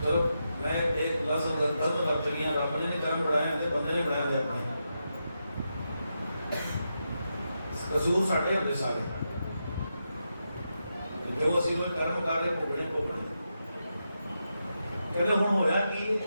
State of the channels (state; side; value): inverted; both; correlation -0.86